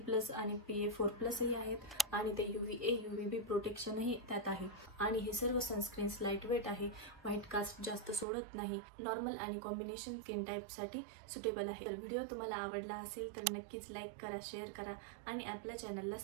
आणि PA4+ ही आहेत आणि ते UVA UVB प्रोटेक्शनही त्यात आहे आणि हे सर्व सनस्क्रीन्स लाईट वेट आहे, व्हाईट कास्ट जास्त सोडत नाही, नॉर्मल आणि कॉम्बिनेशन स्किन टाईपसाठी सुटेबल आहे। तर व्हिडिओ तुम्हाला आवडला असेल तर नक्कीच लाईक करा, शेअर करा आणि आपल्या चॅनलला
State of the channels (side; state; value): left; drops out; at 8.2 s